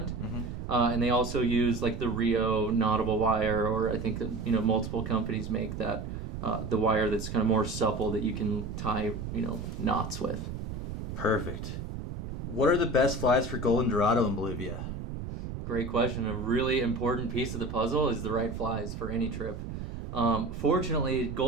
and they also use like the Rio knottable wire, or I think that multiple companies make that the wire that's kind of more supple that you can tie knots with. Perfect. What are the best flies for golden dorado in Bolivia? Great question. A really important piece of the puzzle is the right flies for any trip. Fortunately,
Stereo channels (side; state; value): right; noise; rumble, 7 dB below the sound